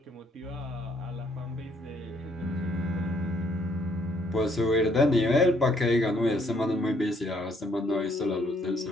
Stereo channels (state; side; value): normal; both; correlation 0.67